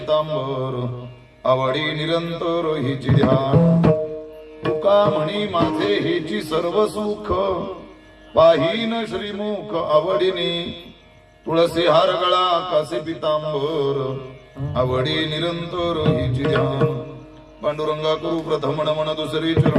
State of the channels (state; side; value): identical; both; correlation 1.00